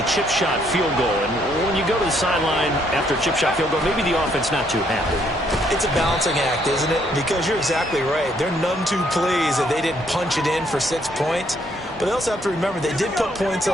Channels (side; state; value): both; normal; correlation 0.69